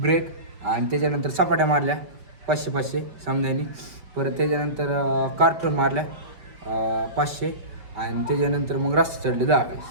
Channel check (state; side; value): late; left; 5.2 ms